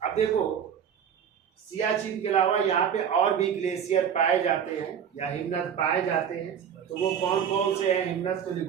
अब देखो सियाचिन के अलावा यहाँ पे और भी ग्लेशियर पाए जाते हैं या हिमनद पाए जाते हैं, तो वो कौन कौन से हैं हिमनद? तो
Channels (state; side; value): quieter; left; 8.2 dB